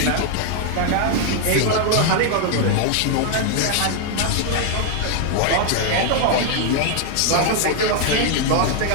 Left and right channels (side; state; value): both; different; correlation 0.00